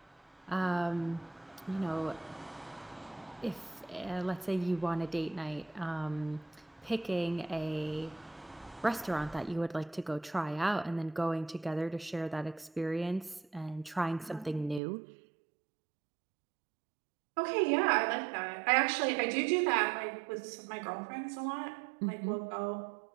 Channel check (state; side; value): drops out; left; at 14.8 s